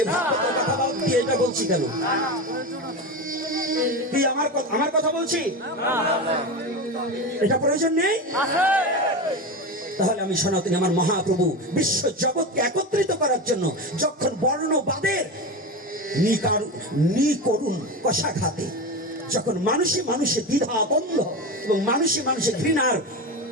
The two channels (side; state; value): both; normal; correlation 0.21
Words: ভাগবতের কথা দিয়ে এটা বলছি কেন? কি আমার কথা বলছি? এটা প্রয়োজন নেই? তাহলে আমি সনাতনী, আমার মহাপ্রভু বিশ্ব জগৎকে একত্রিত করার জন্য যখন বর্ণবাদের নিকরুণ কষাঘাতে, যখন মানুষে মানুষে দ্বিধা দ্বন্দ্ব এবং মানুষে মানুষে ঘৃণার